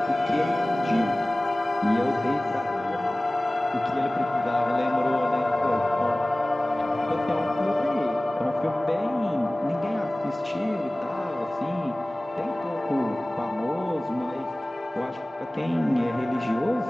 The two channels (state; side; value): normal; both; correlation 0.98